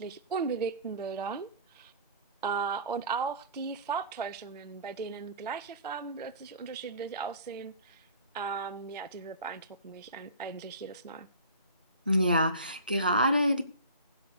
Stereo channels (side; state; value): both; inverted; correlation -0.40